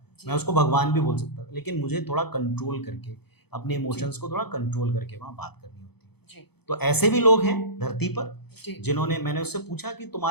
जी मैं उसको भगवान भी बोल सकता था, लेकिन मुझे थोड़ा कंट्रोल करके, अपने इमोशंस को थोड़ा कंट्रोल करके वहाँ बात करनी होती है। जी तो ऐसे भी लोग हैं धरती पर जी जिन्होंने, मैंने उससे पूछा कि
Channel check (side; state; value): right; late; 0.97 ms